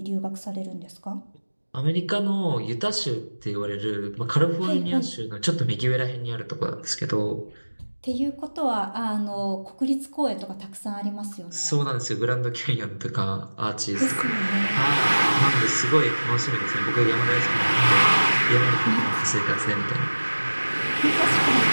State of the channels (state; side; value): inverted; both; correlation -1.00